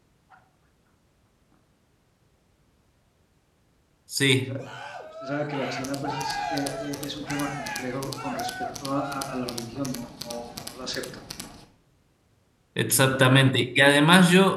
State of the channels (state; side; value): identical; both; correlation 1.00